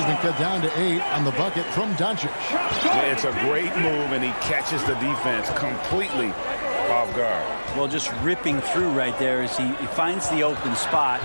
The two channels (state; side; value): inverted; both; correlation -1.00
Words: been cut down to 8 on the bucket from Doncic. Yeah, it's a great move, and he catches the defense completely off guard. Well, just ripping through right there as he finds the open spot